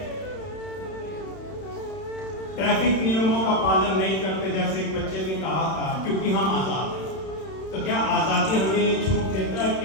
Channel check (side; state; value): right; late; 31 ms